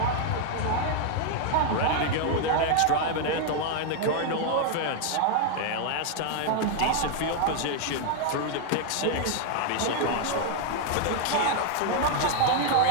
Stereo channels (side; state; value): both; different; correlation 0.00